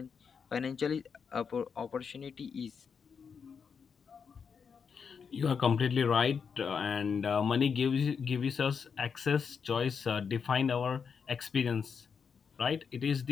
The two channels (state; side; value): quieter; right; 6.2 dB